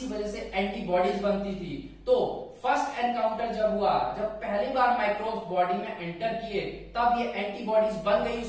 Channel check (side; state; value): both; identical; correlation 1.00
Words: वजह से एंटीबॉडीज बनती थी। तो फर्स्ट एनकाउंटर जब हुआ, जब पहली बार माइक्रोब्स बॉडी में एंटर किए, तब ये एंटीबॉडीज बन गई